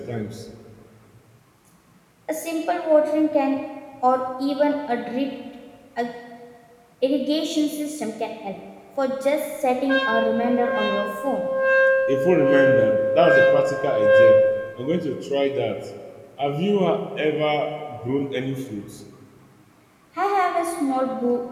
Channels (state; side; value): identical; both; correlation 1.00